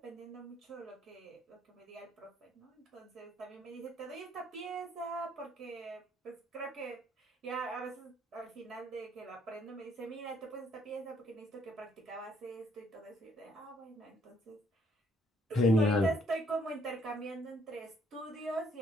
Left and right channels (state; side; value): normal; both; correlation 0.67